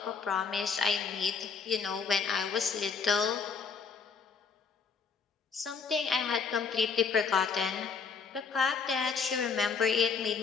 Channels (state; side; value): quieter; right; 5.6 dB